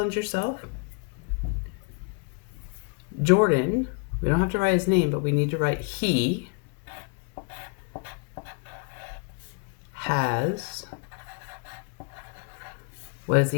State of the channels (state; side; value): quieter; right; 33.7 dB